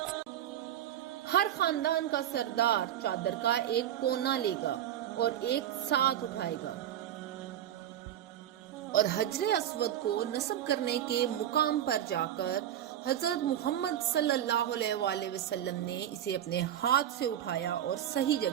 ہر خاندان کا سردار چادر کا ایک کونا لے گا اور ایک ساتھ اٹھائے گا، اور حجر اسود کو نصب کرنے کے مقام پر جا کر حضرت محمد صلی اللہ علیہ وآلہ وسلم نے اسے اپنے ہاتھ سے اٹھایا اور صحیح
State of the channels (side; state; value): left; quieter; 11.2 dB